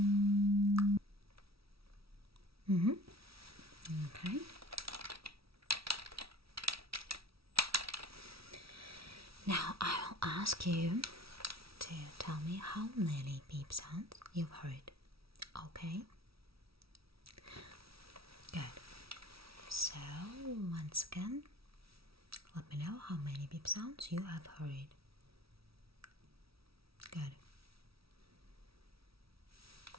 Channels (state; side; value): late; left; 0.76 ms